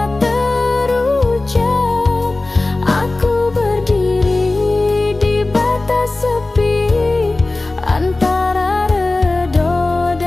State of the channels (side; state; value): right; quieter; 3.1 dB